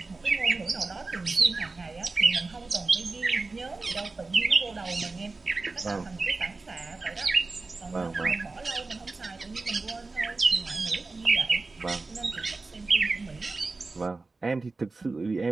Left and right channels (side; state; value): left; quieter; 3.7 dB